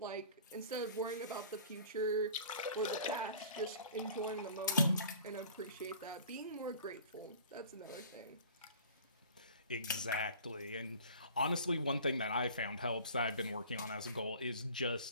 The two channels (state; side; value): inverted; both; correlation -0.45